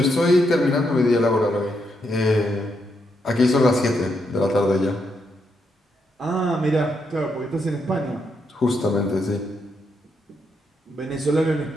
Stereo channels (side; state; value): both; normal; correlation 0.79